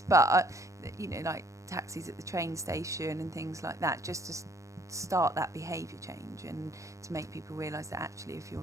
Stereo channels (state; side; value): late; left; 0.15 ms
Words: but you know, like taxis at the train station and things like that, just to start that behaviour change and to make people realise that actually if you're